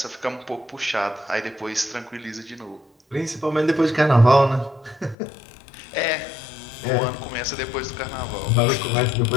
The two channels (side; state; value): right; drops out; at 5.2 s